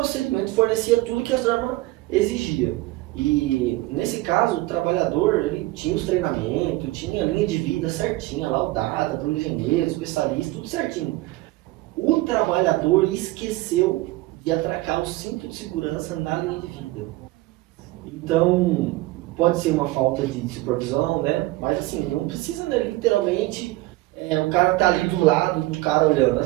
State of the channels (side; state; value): left; quieter; 19.2 dB